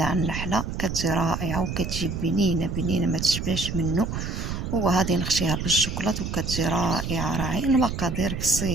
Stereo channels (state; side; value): noise; right; rumble, 4 dB below the sound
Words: النحله كتجي رائعه وكتجي بنينه بنينه ما تشبعش منه. وغادي نخشيها بالشوكولاط وكتجي رائعه. المقادير